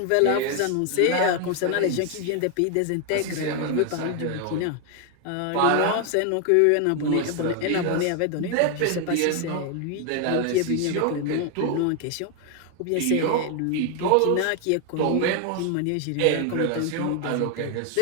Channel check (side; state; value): both; different; correlation 0.01